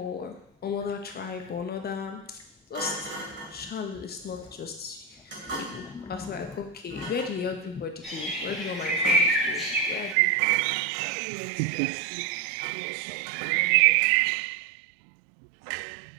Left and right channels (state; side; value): drops out; left; at 10.2 s